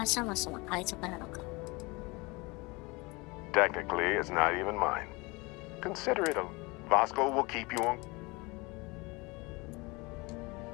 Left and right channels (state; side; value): quieter; right; 25.5 dB